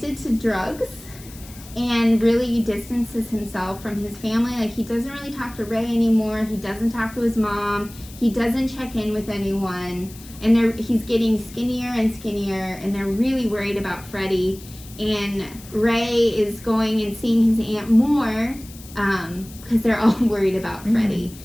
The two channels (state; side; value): noise; left; hiss, 19 dB below the sound